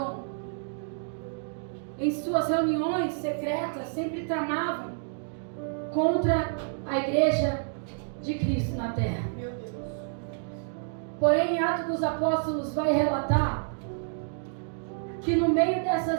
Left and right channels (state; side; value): silent; left; digital silence